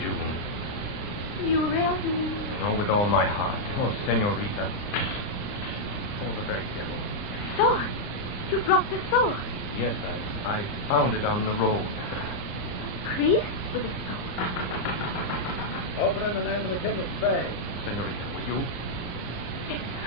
You really mean that? Oh, with all my heart. Oh, senorita. Oh, the very devil. Sword! You brought the sword. Yes, I found it on the road. A priest with a sword. Open in the name of the King of Spain. Senorita, will you? Yes,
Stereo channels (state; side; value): late; right; 39 ms